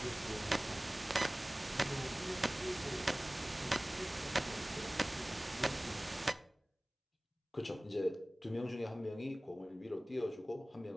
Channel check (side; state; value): both; normal; correlation 0.98